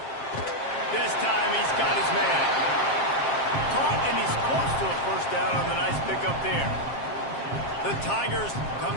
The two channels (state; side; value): late; right; 7.5 ms